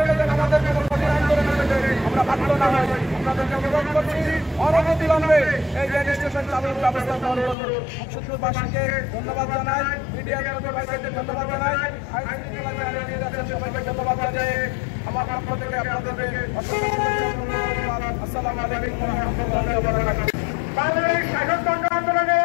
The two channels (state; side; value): drops out; right; at 7.6 s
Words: ধন্যবাদ জানাই, মিডিয়ার ধন্যবাদ জানাই, সবাইকে ধন্যবাদ জানাই। আমার পক্ষ থেকে আপনাদেরকে আসসালামু আলাইকুম ওয়া রাহমাতুল্লাহি ওয়া বারাকাতুহু। বাংলাদেশ স্বাধীনতা